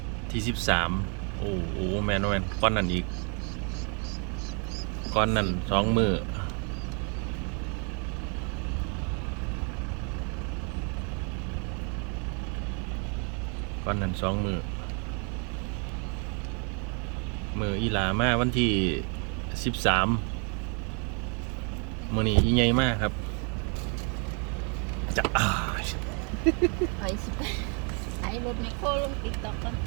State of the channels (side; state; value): left; quieter; 37.3 dB